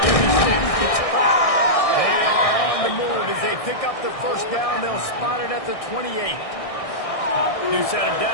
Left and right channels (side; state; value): right; late; 1.6 ms